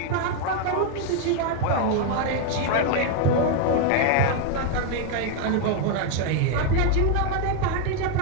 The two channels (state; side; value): different; both; correlation 0.00